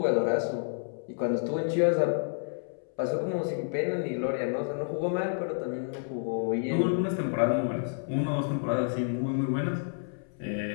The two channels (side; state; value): right; silent; 58 dB below the other